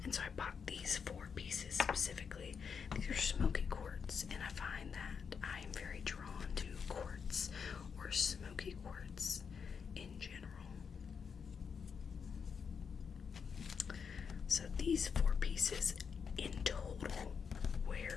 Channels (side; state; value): right; quieter; 6.3 dB